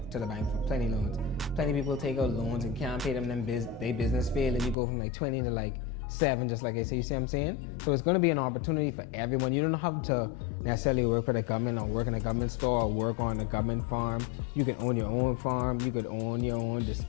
to the bank for plenty loans. Plenty people take out loans and can't pay them. Then they business fail, and you go from like 20 to like 7, just like I say. You see what I'm saying? So it's gonna be an opportunity for everyone. You don't have to necessarily work for the government or work in a government store or work on a government farm. You can own your own farm. You could own your own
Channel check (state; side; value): drops out; right; at 4.8 s